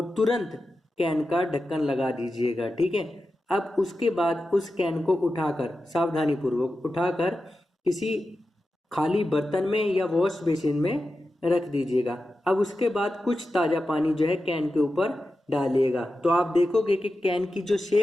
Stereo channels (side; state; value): both; normal; correlation 0.92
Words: तुरंत कैन का ढक्कन लगा दीजिएगा। ठीक है, अब उसके बाद उस कैन को उठाकर, सावधानी पूर्वक उठाकर, किसी खाली बर्तन में या वॉश बेसिन में रख दीजिएगा। अब उसके बाद कुछ ताजा पानी जो है कैन के ऊपर डालिएगा, तो आप देखोगे कि कैन की जो